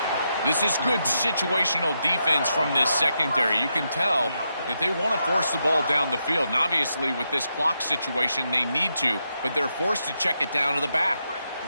This is good situational defense from this secondary. You can tell that they want to force the ball down the field. And obviously, with this clock situation, they need to, but they're forced to check it down to the back.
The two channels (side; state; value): both; inverted; correlation -0.83